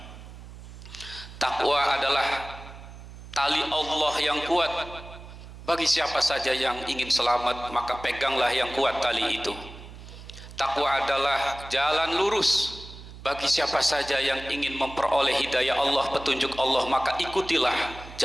Takwa adalah tali Allah yang kuat. Bagi siapa saja yang ingin selamat, maka peganglah yang kuat tali itu. Takwa adalah jalan lurus. Bagi siapa saja yang ingin memperoleh hidayah Allah, petunjuk Allah, maka ikutilah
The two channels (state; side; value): noise; right; hum, 15 dB below the sound